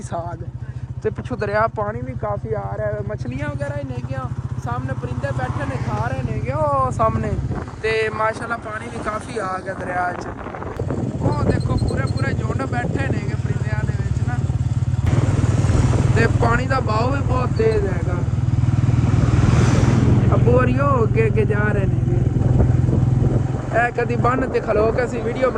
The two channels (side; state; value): both; identical; correlation 1.00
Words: साग ते पिछू दरिया पानी भी काफ़ी आ रहा है, मछलियां वगैरह ही नहीं गया, सामने परिंदे बैठे ने खा रहे ने गए वो सामने ते माशाल्लाह पानी भी काफ़ी आ गया दरिया च। वो देखो पूरे झुंड बैठे ने परिंदियां दे विच ना, ते पानी का बहाव भी बहुत तेज हैगा। अबू होरियो अगे जा रहे ने कभी बन ते खलो के असी वीडियो